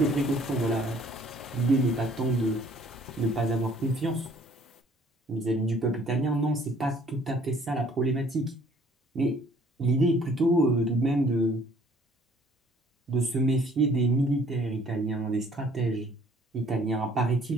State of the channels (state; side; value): normal; both; correlation 0.58